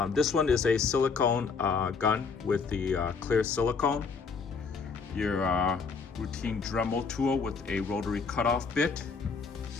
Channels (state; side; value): quieter; right; 5.1 dB